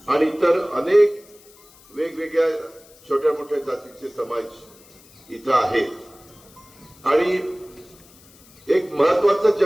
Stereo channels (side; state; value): left; noise; hiss, 26 dB below the sound